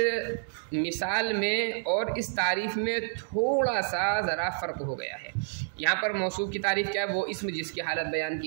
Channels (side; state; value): left; silent; 58 dB below the other